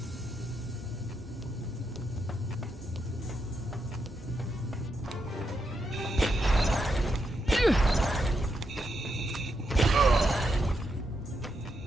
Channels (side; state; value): both; normal; correlation 0.83